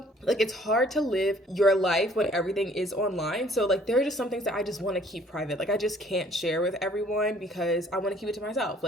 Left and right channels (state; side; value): normal; both; correlation 0.58